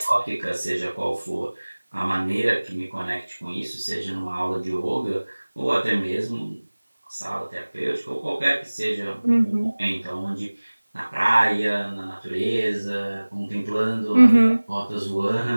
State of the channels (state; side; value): inverted; both; correlation -1.00